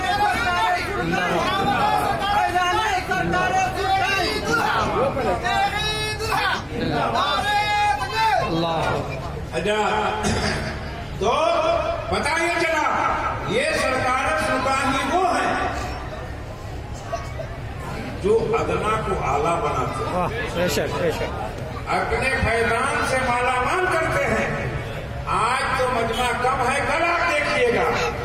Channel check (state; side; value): identical; both; correlation 1.00